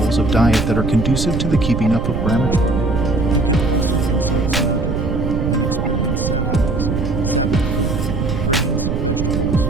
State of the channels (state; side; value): noise; right; rumble, 1 dB below the sound